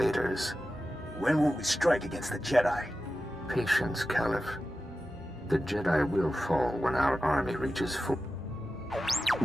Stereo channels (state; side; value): normal; both; correlation 0.93